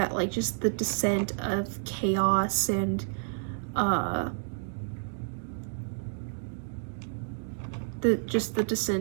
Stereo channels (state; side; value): silent; left; digital silence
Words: like just the descent of chaos and the